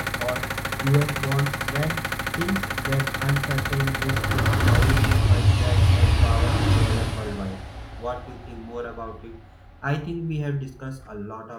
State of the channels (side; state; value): both; identical; correlation 1.00